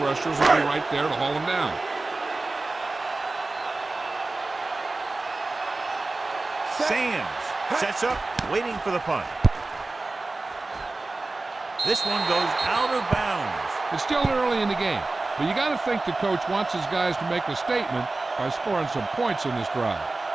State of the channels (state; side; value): quieter; left; 3.3 dB